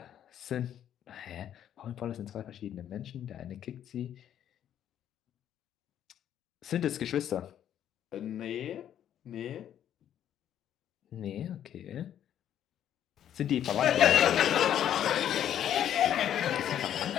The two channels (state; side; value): quieter; right; 10.4 dB